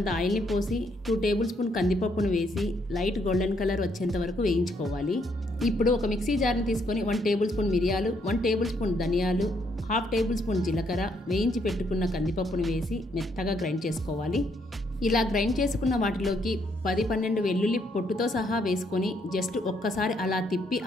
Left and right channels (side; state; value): both; normal; correlation 0.72